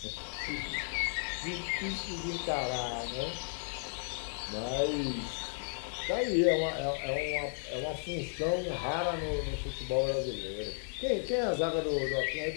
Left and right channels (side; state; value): right; silent; 55 dB below the other